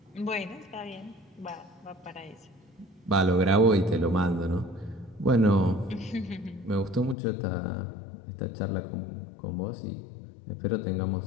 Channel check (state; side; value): drops out; right; at 7.2 s